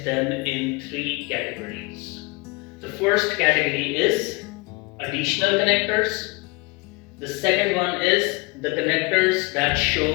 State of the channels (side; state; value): right; quieter; 26.7 dB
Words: them in three categories. The first category is additional connectors. The second one is the connectors that